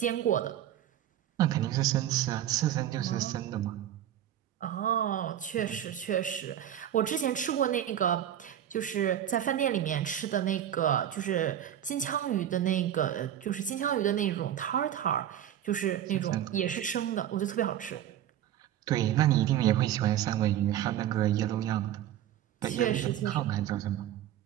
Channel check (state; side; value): quieter; left; 11.1 dB